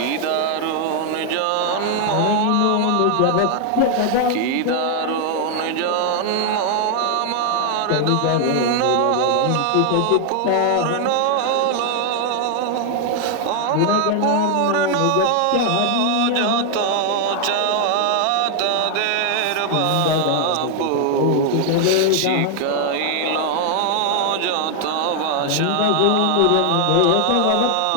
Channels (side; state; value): both; different; correlation 0.00